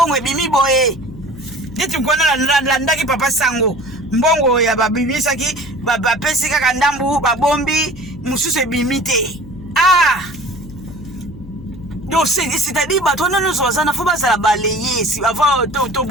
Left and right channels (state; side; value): noise; left; hum, 17 dB below the sound